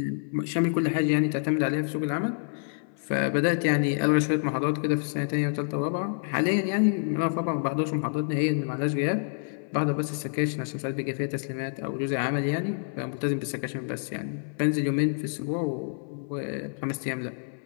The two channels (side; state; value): right; silent; 60 dB below the other